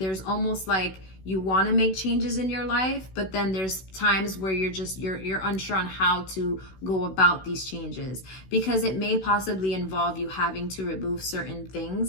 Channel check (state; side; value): late; right; 16 ms